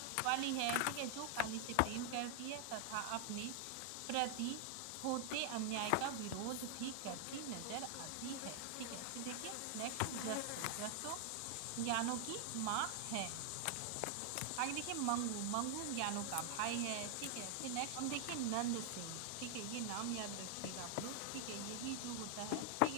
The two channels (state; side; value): different; both; correlation 0.00